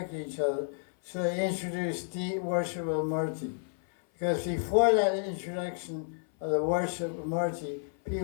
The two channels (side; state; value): right; silent; 57 dB below the other